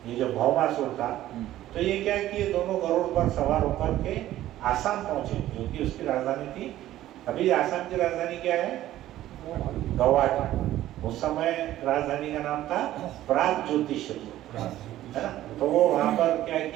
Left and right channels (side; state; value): left; quieter; 13.9 dB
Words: ये जो भौमासुर था। तो ये क्या किए, दोनों गरुड़ पर सवार होकर के आसाम पहुंचे, जो कि उसकी राजधानी थी। अभी आसाम की राजधानी क्या है? गुवाहाटी। उस समय राजधानी का नाम था प्राग ज्योतिषपुर, है ना। तो वो वहां पर क्या